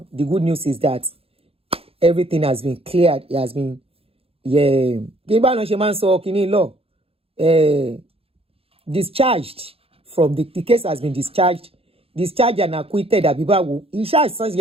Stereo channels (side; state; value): left; late; 0.28 ms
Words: the good news is that everything has been cleared. It has been, discharged from the case has been discharged and acquitted. He